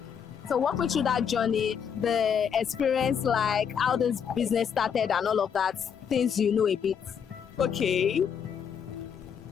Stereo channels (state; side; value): quieter; right; 7.5 dB